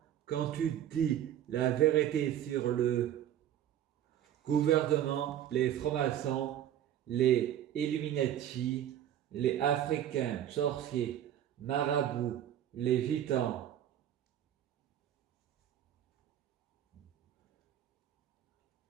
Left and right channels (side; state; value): left; quieter; 11.0 dB